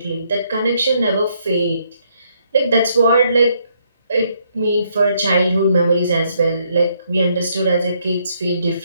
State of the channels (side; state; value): both; inverted; correlation -0.72